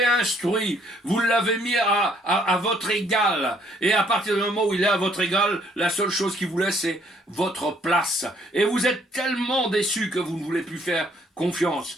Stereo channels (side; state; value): both; normal; correlation 0.65